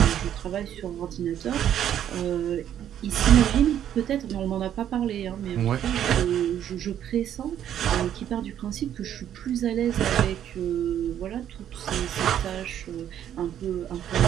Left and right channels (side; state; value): left; quieter; 10.4 dB